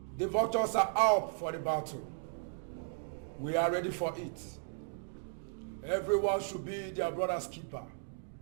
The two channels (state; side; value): silent; left; digital silence